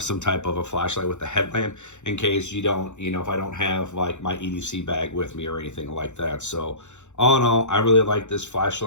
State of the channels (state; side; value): late; right; 0.84 ms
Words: some type of a flashlight with a headlamp in case you don't, if I don't have like my EDC bag with me or anything like that. So all in all, I really like this